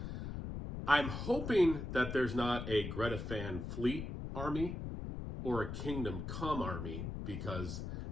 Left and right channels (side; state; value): left; noise; rumble, 6 dB below the sound